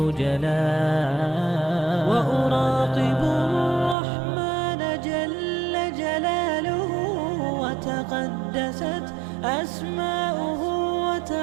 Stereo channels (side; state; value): left; drops out; at 4.0 s